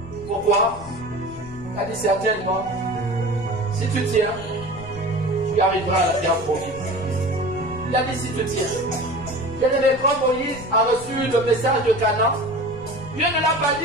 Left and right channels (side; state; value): left; noise; rumble, 16 dB below the sound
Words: Pourquoi? Il a dit certainement, si tu tiens, tu arriveras à la terre promise. Il a dit si tu tiens. Bien-aimé, quand Moïse a reçu le message de Canaan, Dieu ne l'a pas